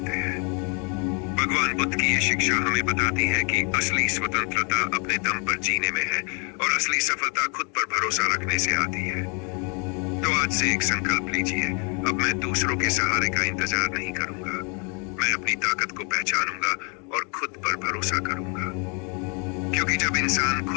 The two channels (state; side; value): quieter; right; 35.0 dB